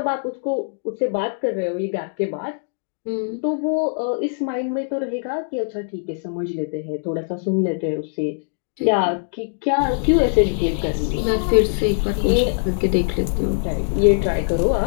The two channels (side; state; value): right; silent; digital silence